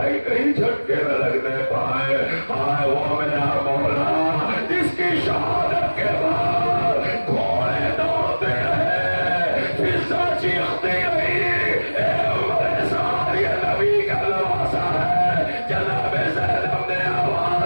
کہیں جھٹکے نہ لگنے پائے. ہائے وہ میرا مولا جس کی شہادت کے بعد گھوڑے دوڑتے ہیں، فضا چیختی رہی، اے عمر سار یہ نبی کا لباسا ہے. جناب زینب نے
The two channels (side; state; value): both; inverted; correlation -1.00